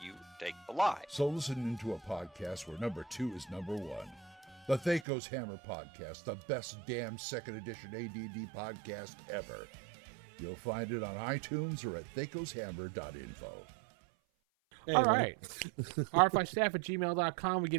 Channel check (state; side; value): drops out; left; at 5.1 s